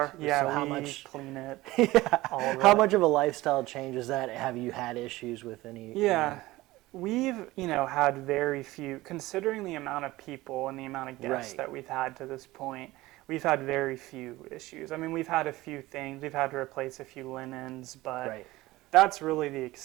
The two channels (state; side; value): quieter; left; 18.6 dB